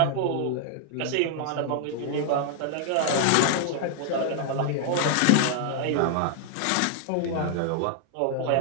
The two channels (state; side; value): different; both; correlation -0.01